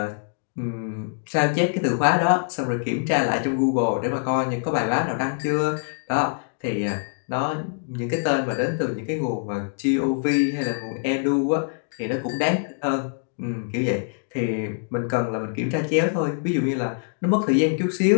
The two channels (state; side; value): silent; right; digital silence